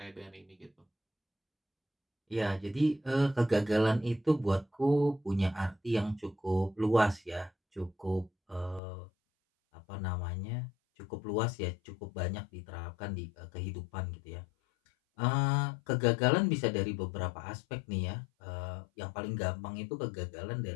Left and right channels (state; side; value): drops out; right; at 8.8 s